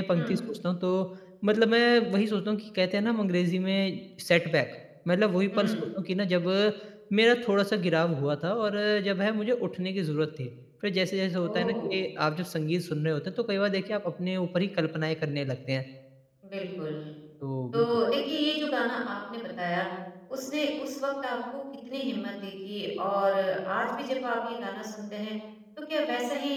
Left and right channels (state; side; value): identical; both; correlation 1.00